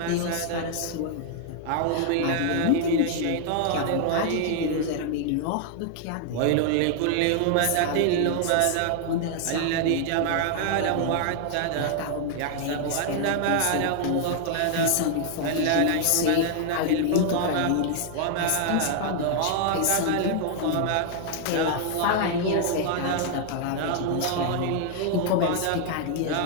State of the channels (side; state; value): both; different; correlation 0.00